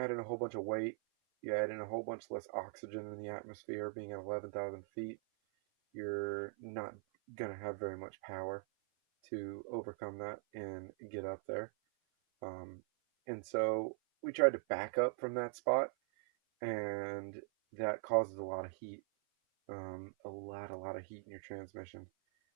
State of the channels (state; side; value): silent; left; 50 dB below the other